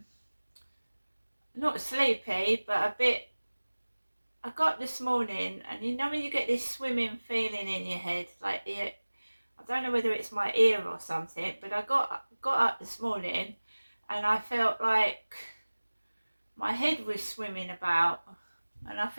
not sleepy, but a bit. I got this morning, and you know when you get this swimming feeling in your head, like I don't know whether it's my ear or something, but I got up this morning, and I felt like my head was swimming about and I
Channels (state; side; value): inverted; both; correlation -1.00